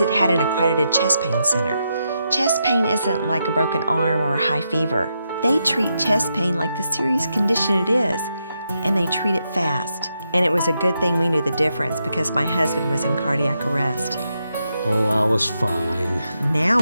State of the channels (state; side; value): inverted; both; correlation -0.84